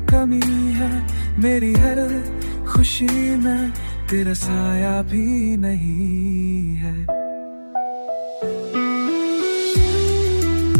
कमी है, मेरी हर खुशी में तेरा साया भी नहीं है।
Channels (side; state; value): both; inverted; correlation -1.00